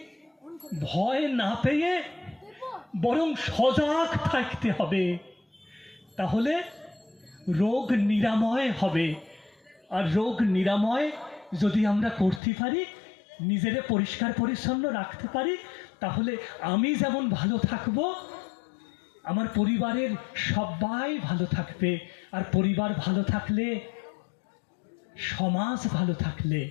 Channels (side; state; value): right; drops out; at 12.4 s